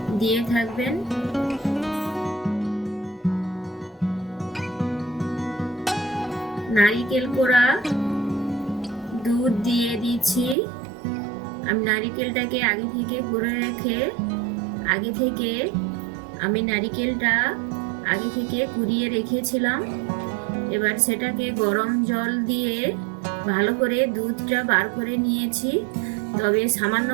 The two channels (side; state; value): left; drops out; at 10.6 s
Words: দিয়ে থাকবেন। নারিকেল কোড়া দুধ দিয়ে দিচ্ছি। আমি নারিকেলটাকে আগে থেকে করে রেখে আমি নারিকেলটা আগে থেকে কুড়িয়ে রেখেছিলাম। এবার সেটাকে গরম জল দিয়ে ভালো করে দুধটা বার করে নিয়েছি। তবে সামান্য